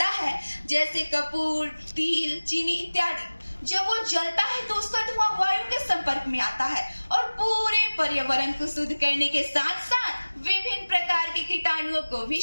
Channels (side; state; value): both; inverted; correlation -1.00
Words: है, जैसे कपूर, तिल, चीनी इत्यादि, जब वो जलता है तो उसका धुआं वायु के संपर्क में आता है और पूरे पर्यावरण को शुद्ध करने के साथ साथ विभिन्न प्रकार के कीटाणुओं को भी